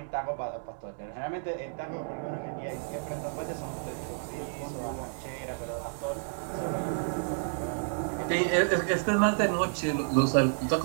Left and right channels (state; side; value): silent; left; digital silence